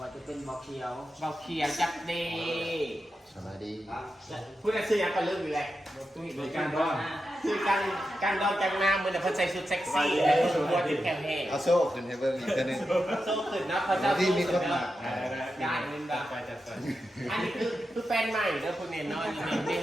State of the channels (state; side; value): normal; both; correlation 0.89